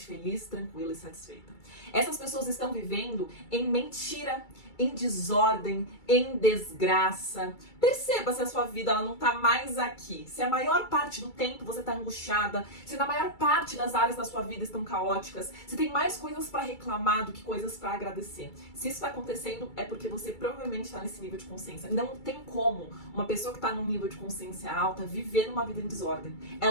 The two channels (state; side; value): late; right; 2.3 ms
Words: feliz, tranquila e satisfeita. Essas pessoas estão vivendo em mentira, em desordem, em desgraça. Perceba se a sua vida ela não tá mais aqui. Se a maior parte do tempo você tá angustiada, se na maior parte das áreas da sua vida estão caóticas, se tem mais coisas para reclamar do que coisas para agradecer. Se isso tá acontecendo, é porque você provavelmente tá nesse nível de consciência. Não tem como uma pessoa que tá num nível de consciência alta viver numa vida em desordem.